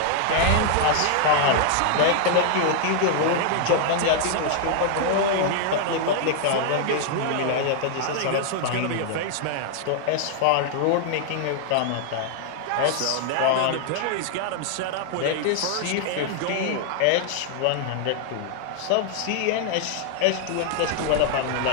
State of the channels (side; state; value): both; different; correlation 0.00